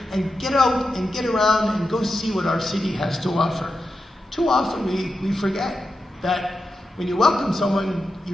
and get out and get around and go see what our city has to offer. Too often we forget that when you welcome someone, you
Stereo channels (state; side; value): normal; both; correlation 0.89